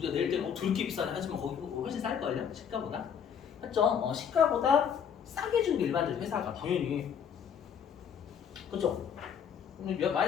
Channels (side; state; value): right; quieter; 7.8 dB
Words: 내일 때는 그렇게 비싸네 하지만 거기 훨씬 쌀걸요? 시가보다? 맞죠? 시가보다 싸게 주는 게 일반적인 회사가 당연히. 그죠? 근데